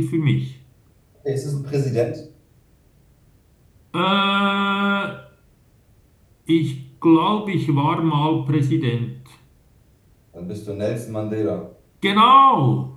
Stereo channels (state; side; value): identical; both; correlation 1.00